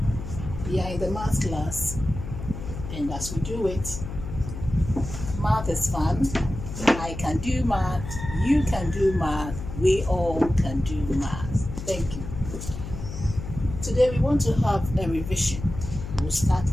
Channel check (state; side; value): noise; left; hum, 9 dB below the sound